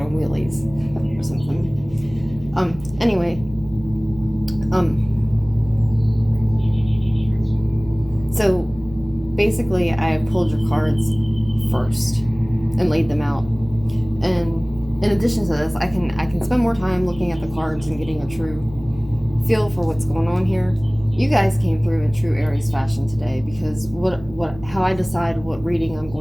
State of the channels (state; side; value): noise; right; hum, 17 dB below the sound